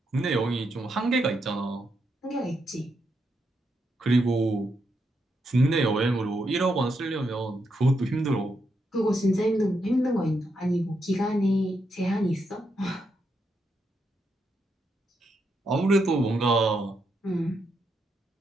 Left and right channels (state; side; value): normal; both; correlation 0.81